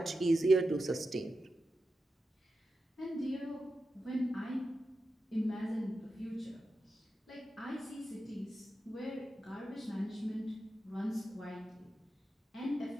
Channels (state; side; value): normal; both; correlation 0.90